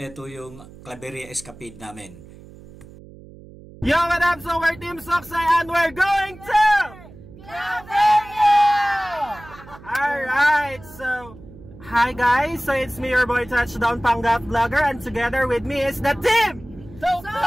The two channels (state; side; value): noise; right; hum, 19 dB below the sound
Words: yung Claveria Escapade namin. Yo, what up? So we're Team Soksay and we're going to Claveria! Alright, so hi guys, so it's me, your boy Touchdown Panggap Vlogger, and together with me is the team